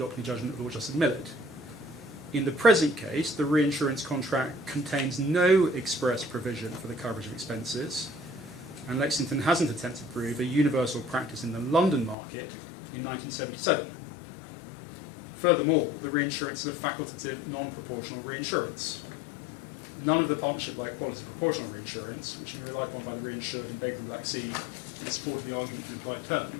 the judgment of Lord Justice Millett. In the present case, the reinsurance contract contains no express provision for the coverage of expenses, and Lexington hasn't attempted to prove a universal practice in the London market in 1977. Furthermore, the reinsurance is a facultative, non-proportional reinsurance. None of the partnership-like qualities of proportional reinsurance, which have been relied upon by the reinsured in Baker and Black Sea in support of the argument for an implied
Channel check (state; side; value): drops out; right; at 12.2 s